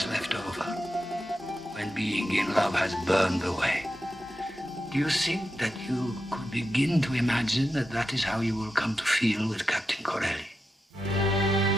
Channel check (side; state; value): both; normal; correlation 0.88